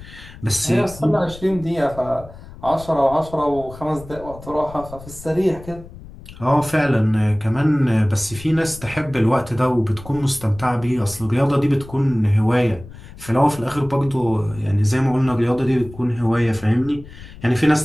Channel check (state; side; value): noise; left; rumble, 17 dB below the sound